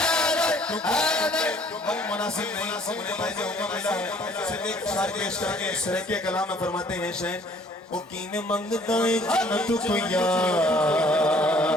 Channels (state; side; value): normal; both; correlation 0.58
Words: مناسب نہیں مجھے پہلے حکم ملا ہے صرف ایک شعر پیش کر کے سرکے کلام میں فرماتے ہیں شہر وہ کین منگدائیں جنت کو یار